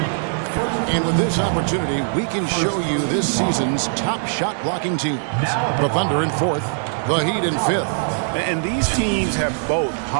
And with this opportunity, we can show you this season's top shot blocking teams. The Thunder in 4th. The Heat in 5th. And these teams have both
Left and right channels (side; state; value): left; silent; digital silence